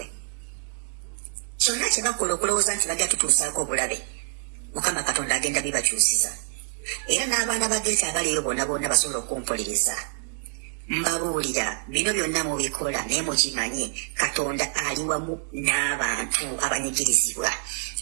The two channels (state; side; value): silent; left; digital silence